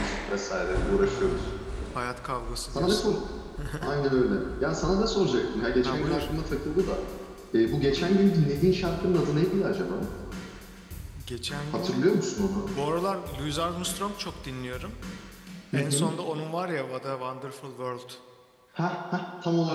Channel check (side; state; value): both; identical; correlation 1.00